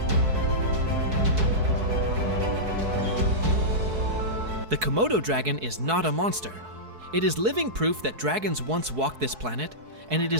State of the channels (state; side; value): late; left; 4.6 ms